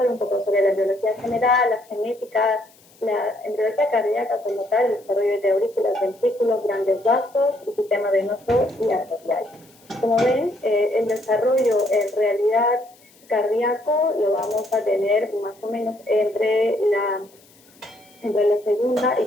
un poco sobre la embriología general, la genética, la embriología cardíaca como tal, el desarrollo de aurículas, ventrículos, grandes vasos, el sistema venoso y arterial. Como ven, el desarrollo en realidad cardíaco lo vamos a tener más o menos entre la segunda y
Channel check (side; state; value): left; noise; hiss, 29 dB below the sound